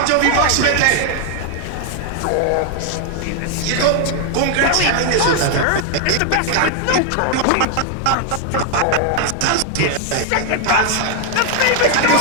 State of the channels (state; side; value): different; both; correlation 0.00